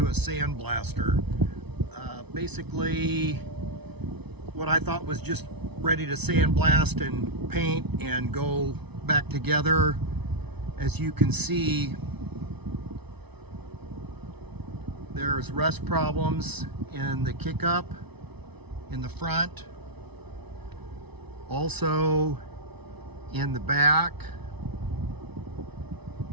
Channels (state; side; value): late; left; 0.99 ms